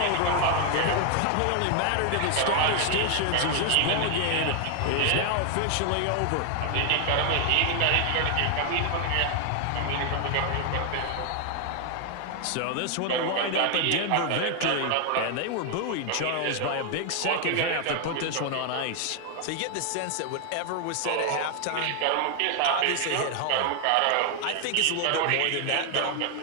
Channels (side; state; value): both; different; correlation 0.00